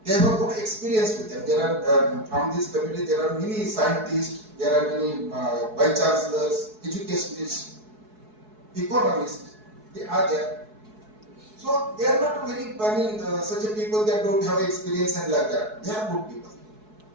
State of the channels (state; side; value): late; left; 4.7 ms